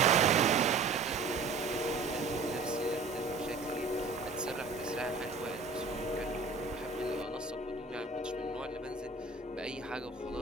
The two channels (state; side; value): quieter; left; 4.1 dB